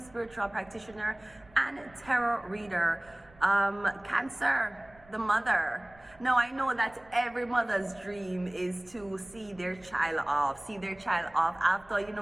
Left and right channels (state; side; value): noise; right; rumble, 26 dB below the sound